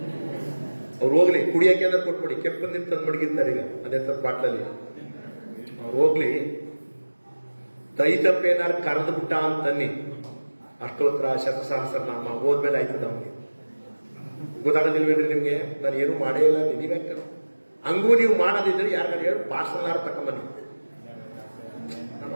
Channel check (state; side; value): inverted; both; correlation -1.00